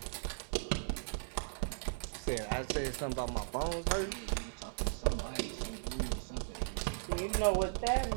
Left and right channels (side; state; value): left; silent; digital silence